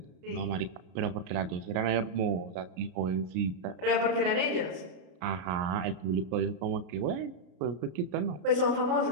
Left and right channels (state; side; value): late; left; 32 ms